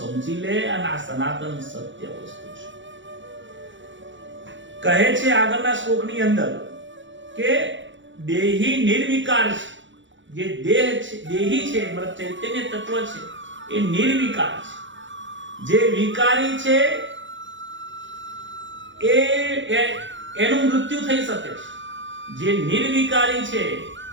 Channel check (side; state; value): left; late; 0.55 ms